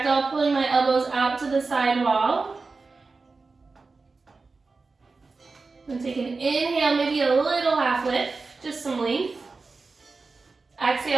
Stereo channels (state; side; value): quieter; left; 4.0 dB